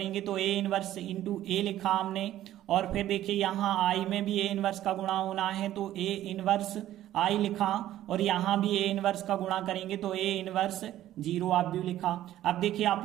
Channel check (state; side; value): quieter; left; 13.2 dB